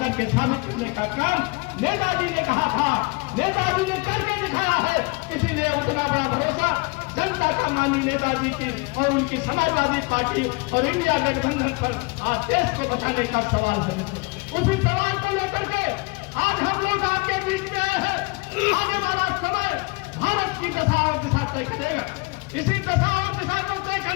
साबित करने का काम नेताजी ने कहा था, नेताजी ने करके दिखाया है। इसीलिए उतना बड़ा भरोसा जनता का मानी नेताजी की और उनकी समाजवादी पार्टी और इंडिया गठबंधन पर आज देश को बचाने का सवाल है। उसी सवाल को लेकर के आज हम लोग आपके बीच में आए हैं। आने वाला समय भारत की दशा और दिशा तय करेगा। इसी दशा और दिशा को तय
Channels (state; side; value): quieter; right; 27.8 dB